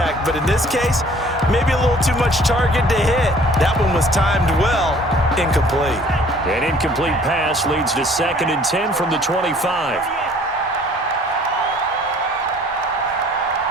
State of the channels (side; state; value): both; normal; correlation 0.54